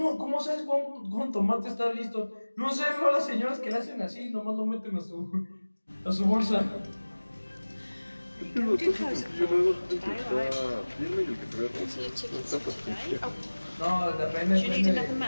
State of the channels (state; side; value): inverted; both; correlation -1.00